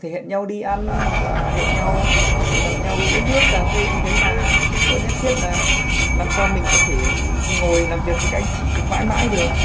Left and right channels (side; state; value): both; identical; correlation 1.00